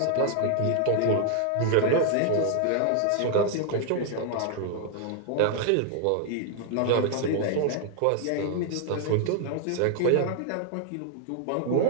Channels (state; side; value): different; both; correlation 0.00